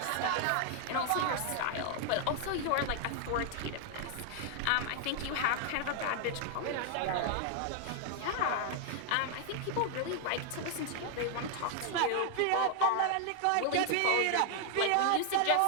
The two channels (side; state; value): both; different; correlation 0.00